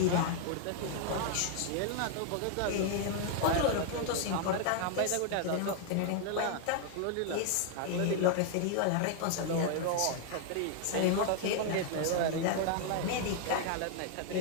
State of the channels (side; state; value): both; different; correlation 0.00